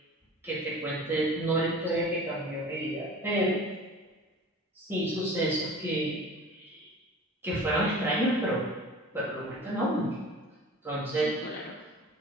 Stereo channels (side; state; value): both; normal; correlation 0.41